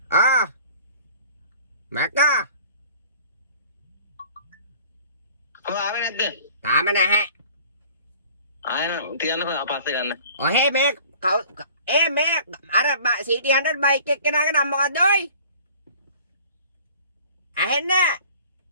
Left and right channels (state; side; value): inverted; both; correlation -0.48